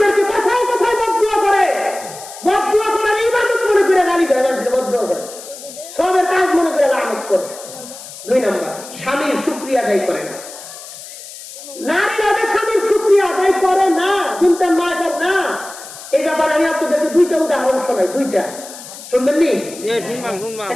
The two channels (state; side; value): noise; left; hiss, 15 dB below the sound